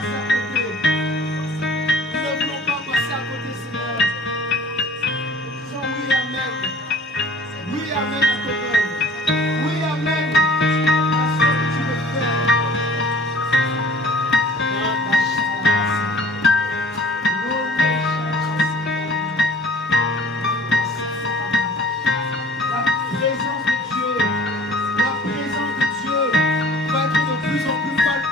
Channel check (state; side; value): normal; both; correlation 0.49